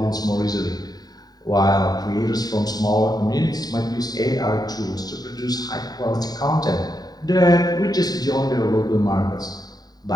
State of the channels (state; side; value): late; right; 0.19 ms